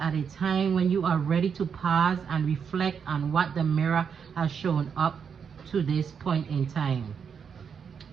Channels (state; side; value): quieter; left; 6.8 dB